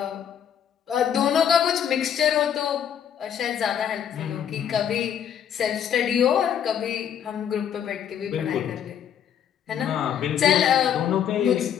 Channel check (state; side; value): quieter; right; 9.0 dB